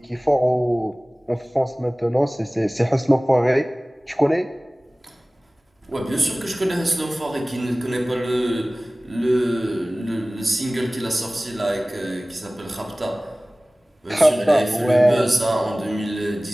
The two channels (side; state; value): both; normal; correlation 0.98